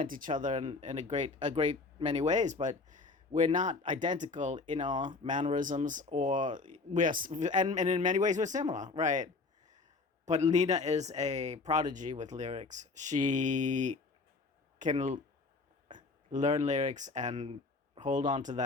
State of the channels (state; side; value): quieter; right; 3.9 dB